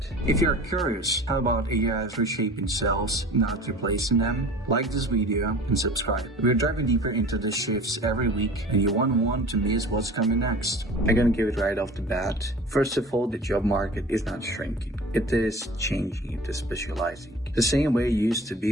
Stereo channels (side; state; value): both; normal; correlation 0.42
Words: If you're curious how about AI is reshaping sales, not replacing them, like this video and subscribe. We're diving deeper into the shifts every week, and you won't want to miss what's coming next. I'm gonna give it right off the bat. First of all, the job market is not shrinking. It is changing, it is specializing. The same way it used to